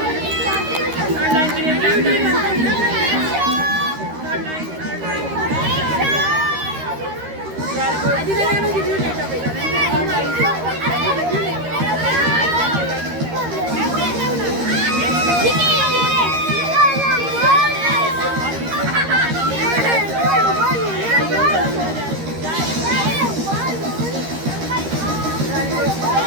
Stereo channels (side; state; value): left; late; 13 ms